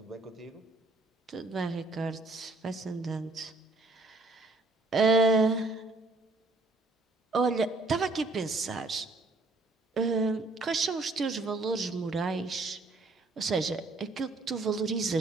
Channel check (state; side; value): quieter; left; 3.2 dB